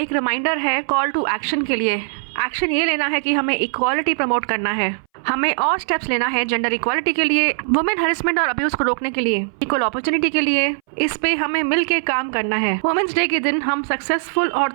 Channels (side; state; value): left; silent; 62 dB below the other